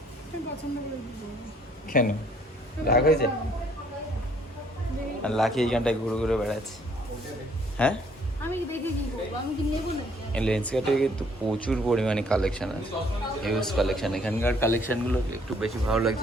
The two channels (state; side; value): normal; both; correlation 0.63